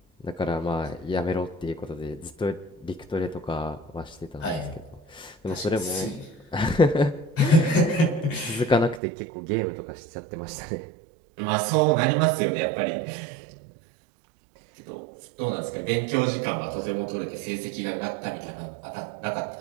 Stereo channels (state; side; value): drops out; left; at 9.0 s